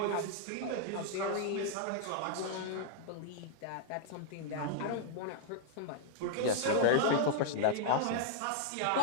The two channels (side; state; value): both; different; correlation -0.01